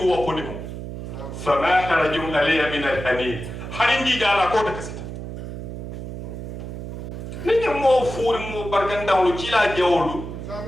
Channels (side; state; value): right; noise; hum, 8 dB below the sound